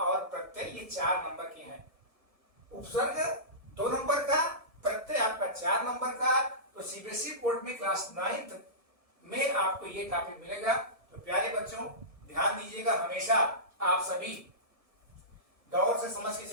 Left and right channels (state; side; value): late; left; 1.7 ms